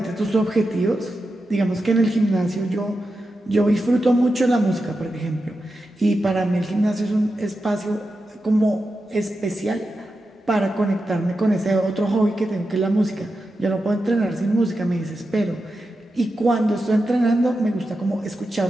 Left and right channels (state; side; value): normal; both; correlation 0.90